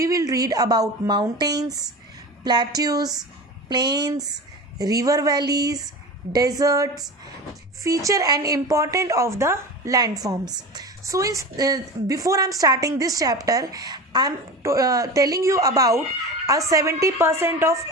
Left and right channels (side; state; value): both; normal; correlation 0.30